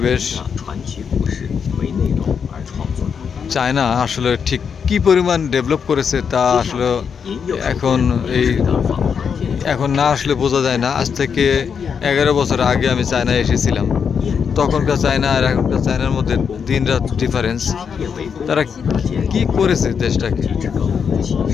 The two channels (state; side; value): quieter; right; 6.7 dB